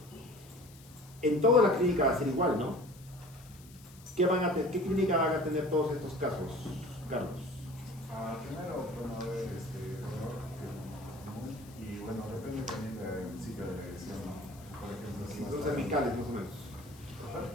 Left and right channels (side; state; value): left; noise; hiss, 23 dB below the sound